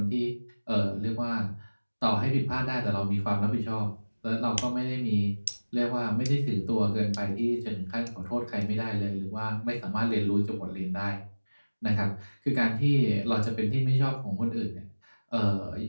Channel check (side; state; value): both; inverted; correlation -1.00